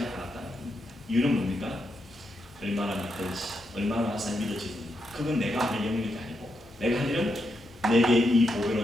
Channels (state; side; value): normal; both; correlation 0.83